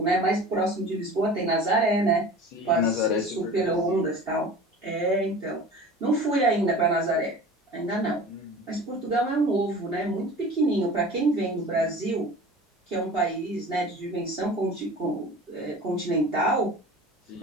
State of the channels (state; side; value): normal; both; correlation 0.39